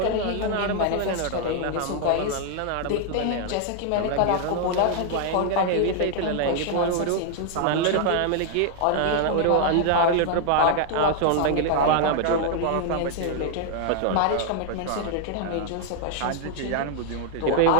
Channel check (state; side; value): different; both; correlation 0.00